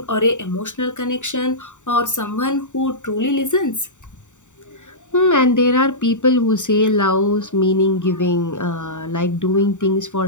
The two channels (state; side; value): late; right; 0.85 ms